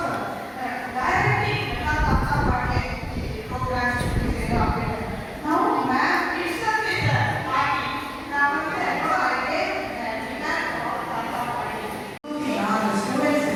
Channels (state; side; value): identical; both; correlation 1.00